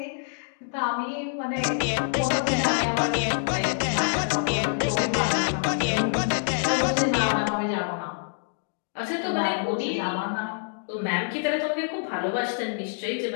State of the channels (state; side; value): silent; right; 61 dB below the other